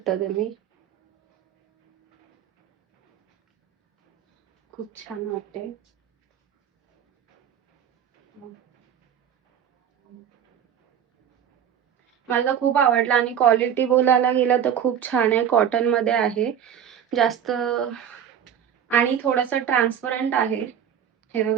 तुम्ही, खूप छान वाटते. मला खूप आवडला आणि क्वालिटी बोलायला गेलं तर खूप छान आहे. कॉटन मध्ये आहे जास्त, आणि थोडासा ट्रान्सपरंट आहे. हे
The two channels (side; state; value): left; quieter; 8.9 dB